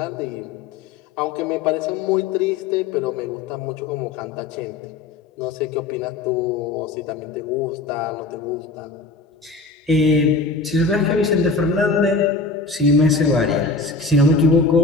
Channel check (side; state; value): right; quieter; 3.9 dB